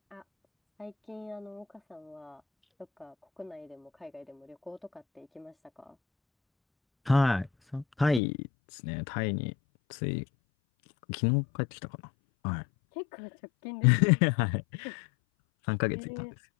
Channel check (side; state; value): right; drops out; at 8.2 s